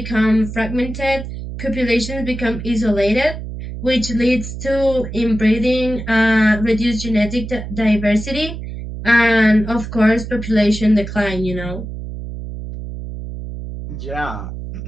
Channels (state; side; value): noise; right; hum, 8 dB below the sound